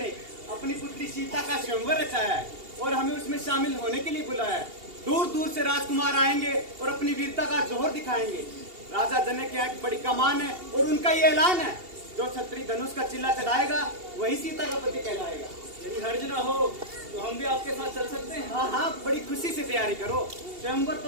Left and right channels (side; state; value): left; late; 2.8 ms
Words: अपनी पुत्री सीता का स्वयंवर रचाया है और हमें उसमें शामिल होने के लिए बुलाया है। दूर दूर से राजकुमार आएंगे और अपनी वीरता का जोहर दिखाएंगे। राजा जनक की एक बड़ी कमान है और उनका ये ऐलान है, जो छत्री धनुष का चिल्ला चढ़ाएगा वही सीता का पति कहलाएगा। यदि हर्ज न हो तो हम भी आपके साथ चल सकते हैं? हाँ हाँ, बड़ी खुशी से तैयारी करो। स्वयंवर